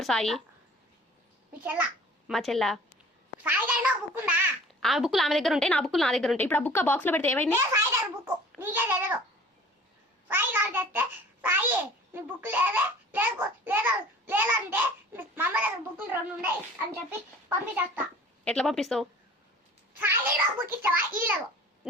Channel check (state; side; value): normal; both; correlation 0.47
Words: సాయి? మీ చెల్ల. మా చెల్ల. సాయి గారి బుక్ ఉందా? ఆ బుక్లు ఆమె దగ్గర ఉంటాయి, నా బుక్లు నా దగ్గర ఉంటాయి. ఇప్పుడు ఆ బుక్ బాక్స్ లో పెడితే ఏమైంది? సాయి గారి బుక్ నీకే తెలియదు. సాయి గారు తెస్తే సాయి నీ బుక్ లేదే లేదంటే మా అమ్మ దగ్గర బుక్లు 2 ఉన్నాయి అని చెప్పి పంపించేస్తా. ఎట్లా పంపిస్తావు? సాయి దగ్గర బుక్ ఇస్తావా? లేదు.